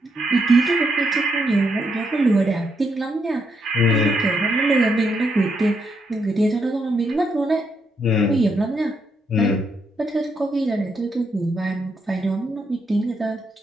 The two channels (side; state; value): both; normal; correlation 0.78